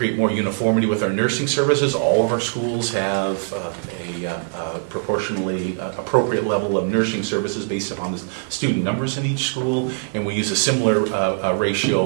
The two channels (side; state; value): left; silent; digital silence